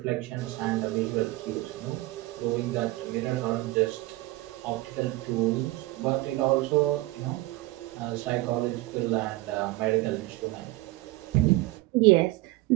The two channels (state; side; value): quieter; left; 19.6 dB